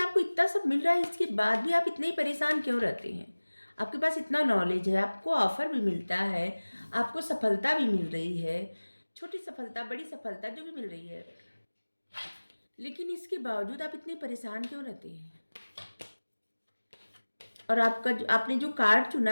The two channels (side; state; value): both; inverted; correlation -1.00